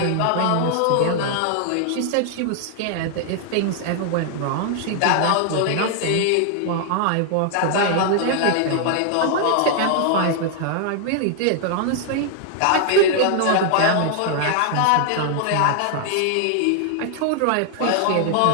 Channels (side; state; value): both; different; correlation 0.00